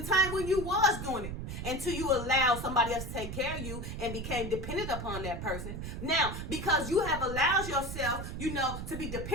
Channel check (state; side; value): noise; right; rumble, 6 dB below the sound